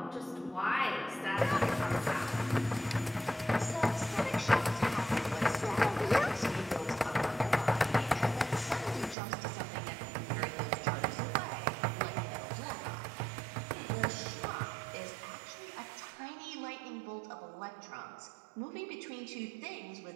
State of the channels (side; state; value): left; drops out; at 9.2 s